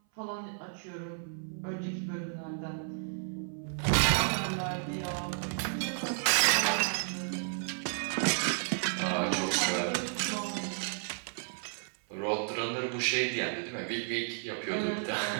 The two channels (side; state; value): left; silent; 56 dB below the other